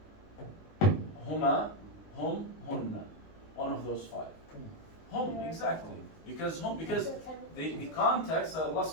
هما, هم, هن. One of those 5. Hum, exactly. Because the context that Allah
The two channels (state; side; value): late; right; 19 ms